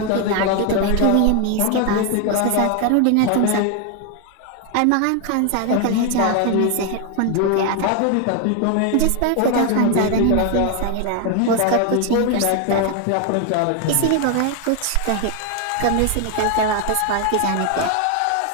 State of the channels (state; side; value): different; both; correlation 0.01